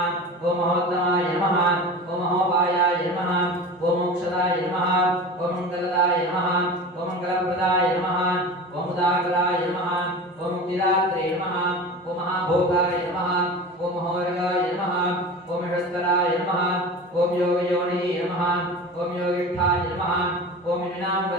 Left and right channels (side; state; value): both; normal; correlation 0.33